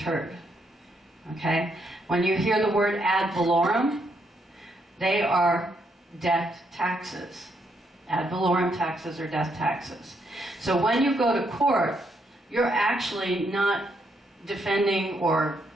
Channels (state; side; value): normal; both; correlation 0.76